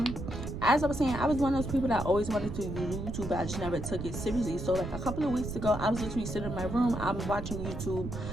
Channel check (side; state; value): right; noise; rumble, 6 dB below the sound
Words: As I was saying, I was one of those people that always wanted to do YouTube, but I just never took it seriously. So like a couple of weeks ago, I was literally sitting in my room, I'm watching YouTube,